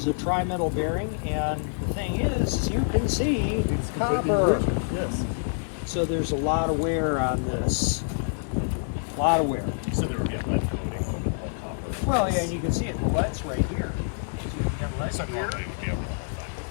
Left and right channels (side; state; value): right; silent; digital silence